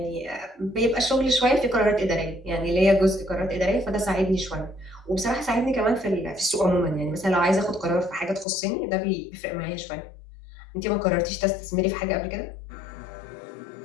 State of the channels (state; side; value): drops out; right; at 8.5 s